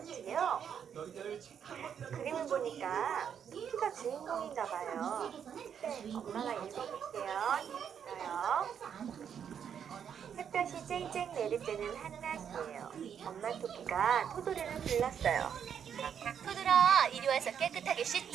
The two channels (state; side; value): quieter; left; 8.1 dB